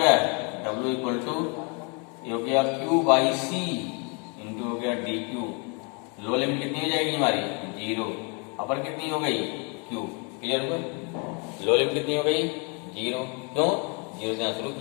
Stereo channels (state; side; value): quieter; right; 34.4 dB